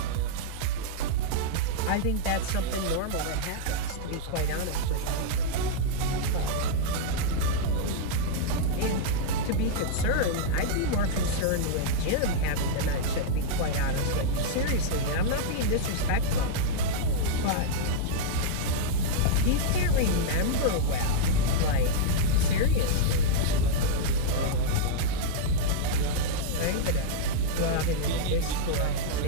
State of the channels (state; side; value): different; both; correlation -0.02